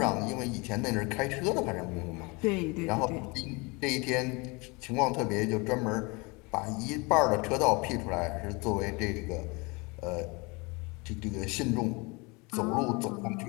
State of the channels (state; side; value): quieter; right; 27.7 dB